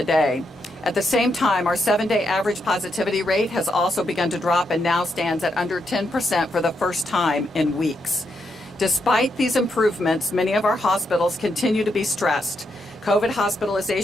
At the same time, our 7-day average positivity rate has also begun to drop and now stands at under 10% for the first time in weeks. Despite these improvements, many of our hospitals continue to be stressed. COVID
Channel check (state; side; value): normal; both; correlation 0.81